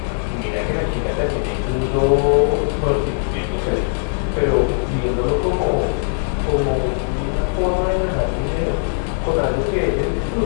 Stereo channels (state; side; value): silent; right; 60 dB below the other